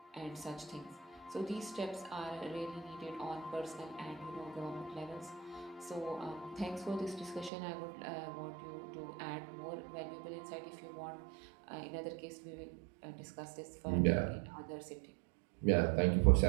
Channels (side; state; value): left; drops out; at 7.5 s